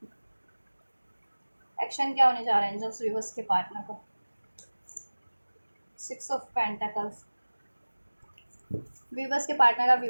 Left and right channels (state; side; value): inverted; both; correlation -1.00